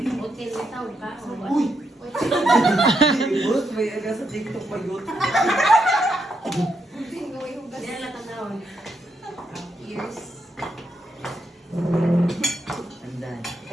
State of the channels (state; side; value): normal; both; correlation 0.81